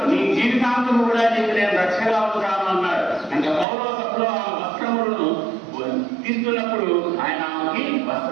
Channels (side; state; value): left; drops out; at 3.7 s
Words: నీ జీవితాంతం కూడా నీకు నేను రక్షగా ఉంటాను అన్నాడు. అంటే కౌరవ సభలో ఆ వస్త్రములను తీసుకున్నప్పుడు ఆయన ఆమెకి